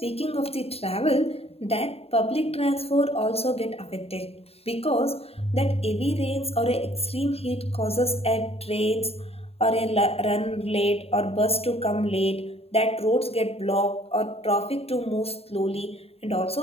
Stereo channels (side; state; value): right; late; 0.29 ms